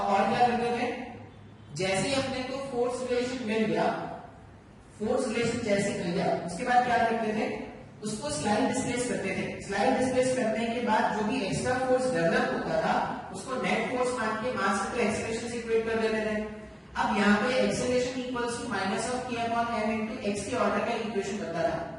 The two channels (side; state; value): both; identical; correlation 1.00